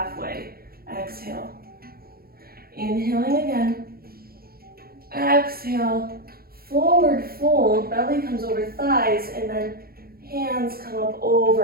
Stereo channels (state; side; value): late; left; 0.44 ms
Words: Exhale. Inhaling again. Exhale, forward fold, belly comes over thighs, and then hands come up